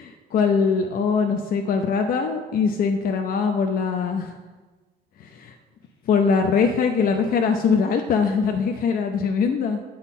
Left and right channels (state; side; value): quieter; right; 5.2 dB